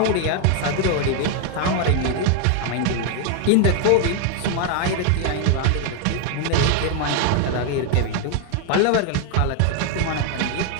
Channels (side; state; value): both; different; correlation 0.00